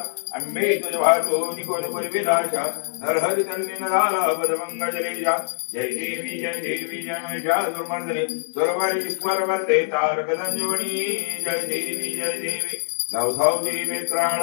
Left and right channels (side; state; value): right; silent; digital silence